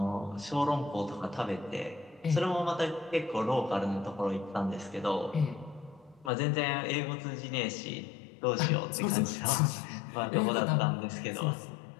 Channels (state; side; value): drops out; right; at 6.3 s